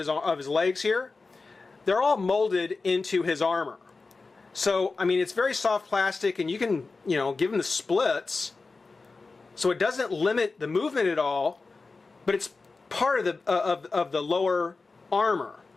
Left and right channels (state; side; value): quieter; right; 3.9 dB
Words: his legs here, they're all molded into his armor. So, I mean, it's very soft plastic, and you can, you know, give him the splits, so it doesn't limit the movement at all, but it's part of the lower armor.